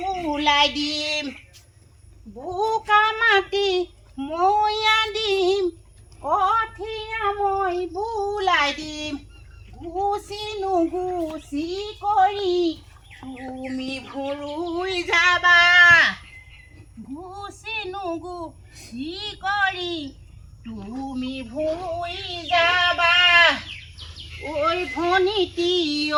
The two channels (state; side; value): identical; both; correlation 1.00